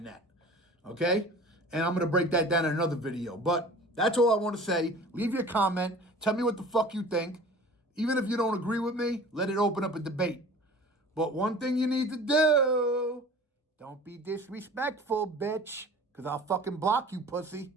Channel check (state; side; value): normal; both; correlation 0.43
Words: that. Okay? And I'm going to break that down in another video. But that's all I want to say. Leave your comment. Tell me what the fuck you think. Even if you don't agree with me, let it open up a debate. But one thing you need to do, don't be disrespectful, bitch. Because I'll fucking block you, pussy.